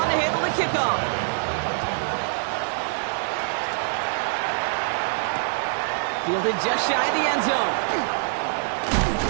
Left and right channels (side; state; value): left; silent; digital silence